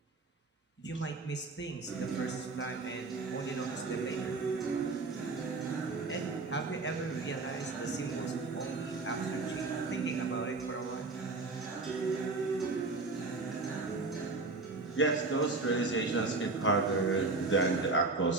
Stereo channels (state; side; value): quieter; left; 3.7 dB